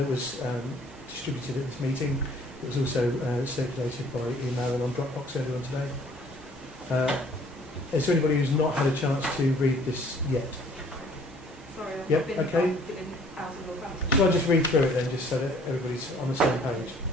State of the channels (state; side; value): normal; both; correlation 0.57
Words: was distributed at this meeting. It was also circulated by email and on Dropbox earlier on today. Is there anybody who's not had a chance to read this yet? Sorry, I've Yep, been, okay. I've been out of Northampton. Shall I just read through it then, just so that everybody's on the same page?